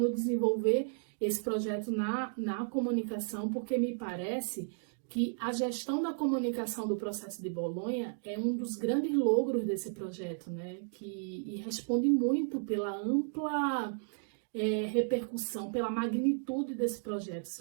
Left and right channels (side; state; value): left; silent; digital silence